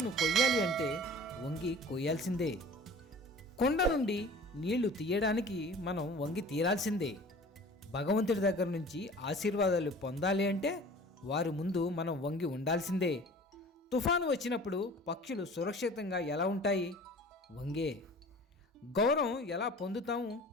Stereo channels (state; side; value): normal; both; correlation 0.43